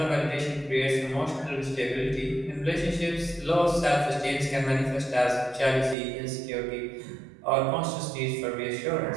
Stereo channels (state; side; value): drops out; left; at 6.0 s